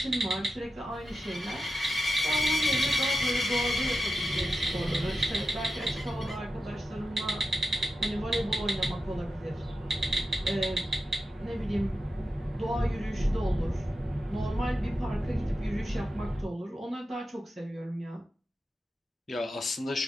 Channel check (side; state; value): both; normal; correlation 0.90